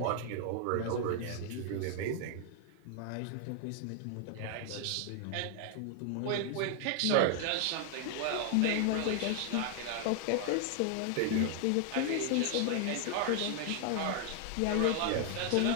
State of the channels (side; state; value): both; different; correlation 0.00